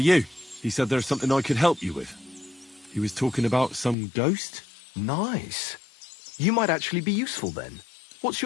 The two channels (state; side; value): drops out; right; at 4.0 s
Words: you. He said there's something I could help you with. He was talking about some ghost? Nice. You might actually be useful then. What's